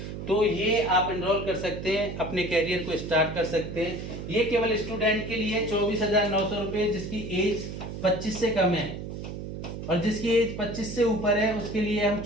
तो ये आप एनरोल कर सकते हैं, अपने कैरियर को स्टार्ट कर सकते हैं। ये केवल स्टूडेंट के लिए 24,900 रुपए, जिसकी एज 25 से कम है, और जिसकी एज 25 से ऊपर है उसके लिए हम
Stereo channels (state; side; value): noise; right; hum, 8 dB below the sound